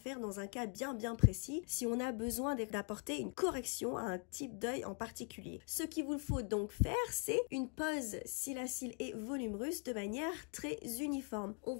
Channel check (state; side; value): quieter; right; 38.8 dB